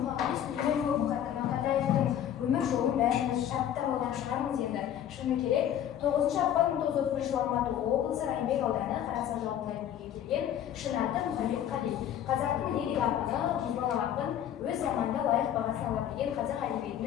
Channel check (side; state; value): right; quieter; 10.4 dB